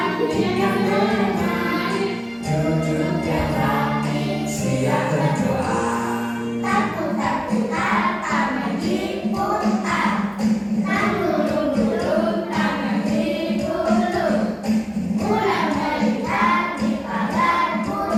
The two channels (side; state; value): both; identical; correlation 1.00